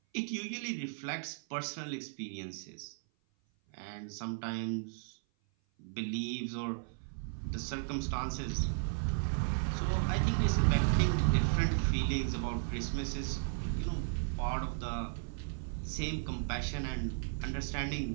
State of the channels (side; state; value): left; silent; 54 dB below the other